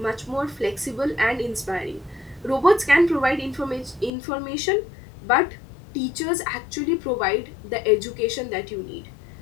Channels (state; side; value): drops out; right; at 4.1 s